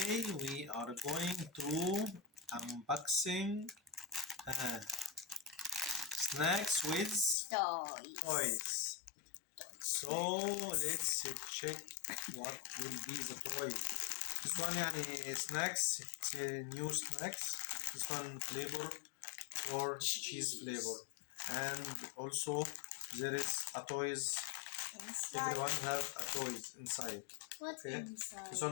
we are going to unboxing snacks with toys. So let's check what will be the toy. This one snacks, it's a new snacks. This one flavor or cheese flavor, and also there is a toys. Inside. Everyone have a toys inside. What Okay. inside? This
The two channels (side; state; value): right; drops out; at 7.4 s